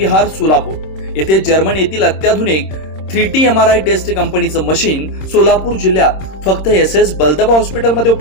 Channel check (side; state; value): right; late; 26 ms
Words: सोलापूर येथे जर्मन येथील अत्याधुनिक 3T MRI टेस्ट कंपनीचं मशीन सोलापूर जिल्ह्यात फक्त SS बलदबा हॉस्पिटलमध्ये